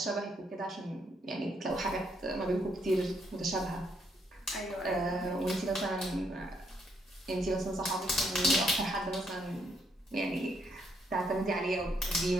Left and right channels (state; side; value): normal; both; correlation 0.73